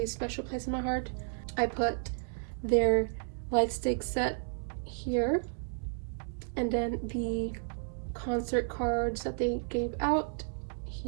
special place in my heart. I put their light stick set here, and then the concert cards that they gave out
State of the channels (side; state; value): left; silent; digital silence